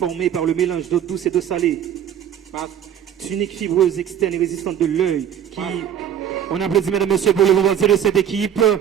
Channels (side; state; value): left; quieter; 9.4 dB